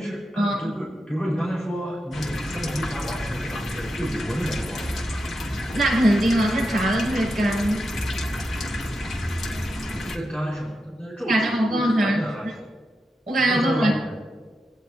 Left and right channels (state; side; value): normal; both; correlation 0.88